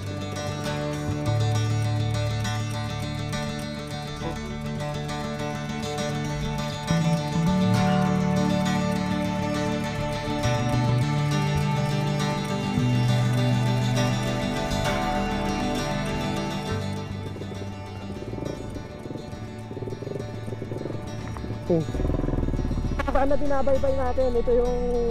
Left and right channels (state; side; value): identical; both; correlation 1.00